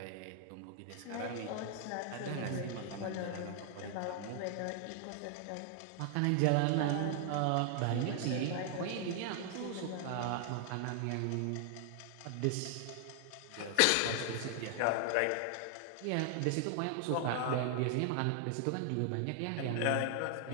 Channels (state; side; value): different; both; correlation 0.00